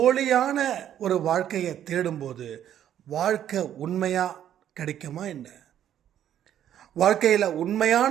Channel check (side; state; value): left; quieter; 10.6 dB